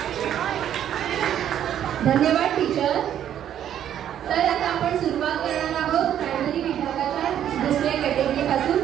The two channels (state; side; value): quieter; left; 10.3 dB